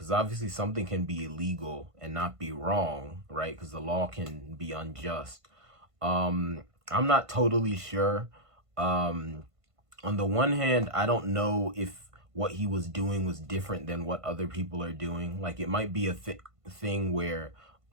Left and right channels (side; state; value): left; late; 1.5 ms